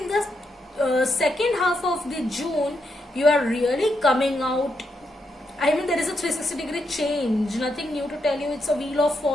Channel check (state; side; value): normal; both; correlation 0.81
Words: the second half of the June you are really coming out. I mean, there is a 360-degree change, nothing new to tell you. It's a wheel of